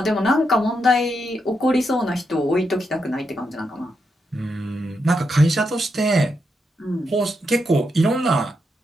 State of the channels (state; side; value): normal; both; correlation 0.83